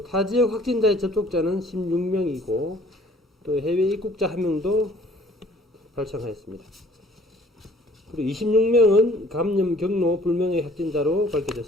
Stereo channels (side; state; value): both; normal; correlation 0.55